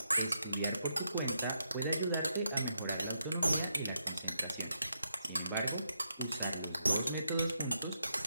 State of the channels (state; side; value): inverted; both; correlation -0.81